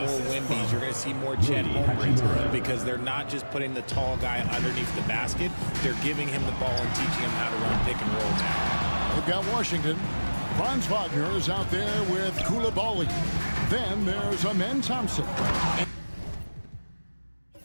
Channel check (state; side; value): inverted; both; correlation -1.00